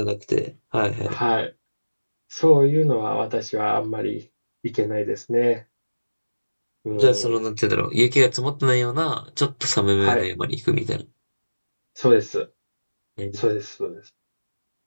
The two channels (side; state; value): both; inverted; correlation -1.00